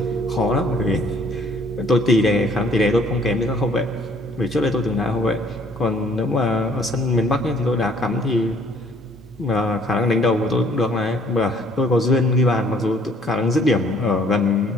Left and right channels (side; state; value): both; normal; correlation 0.60